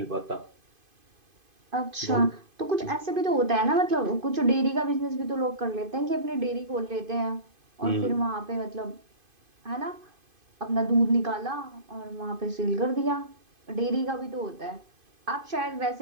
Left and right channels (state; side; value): late; left; 2.5 ms